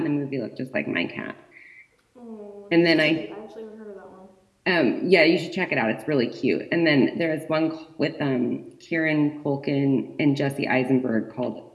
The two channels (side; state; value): both; identical; correlation 1.00